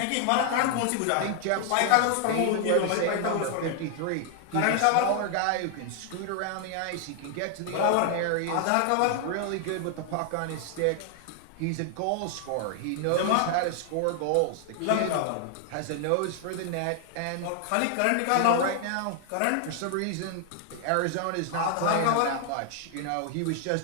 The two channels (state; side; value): different; both; correlation 0.00